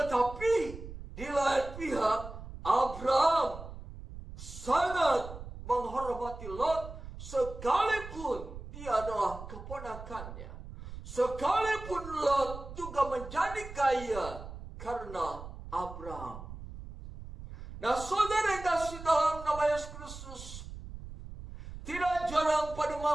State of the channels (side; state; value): right; noise; rumble, 12 dB below the sound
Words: di lain pihak, Abraham sangat menghormati Lot sekalipun dia adalah keponakannya. Sekalipun Lot juga menjadi kaya karena Abraham. Nah, saudara yang kasih dalam nama Yesus Kristus, tidak jarang pada